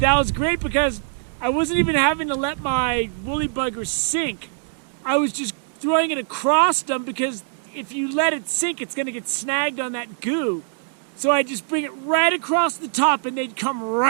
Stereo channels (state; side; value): silent; left; digital silence